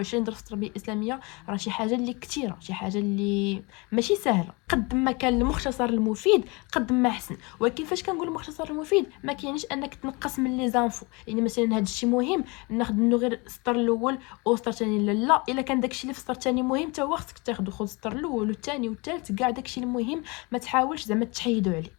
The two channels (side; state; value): right; quieter; 27.5 dB